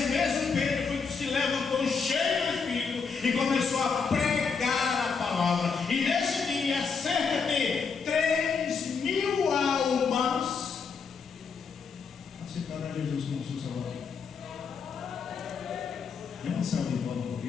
mesmo Pedro foi que se levantou cheio do Espírito e começou a pregar a palavra. E nesse dia, cerca de 3.000 almas aceitaram a Jesus como seu Salvador. É uma salva de palmas por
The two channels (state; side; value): quieter; right; 5.5 dB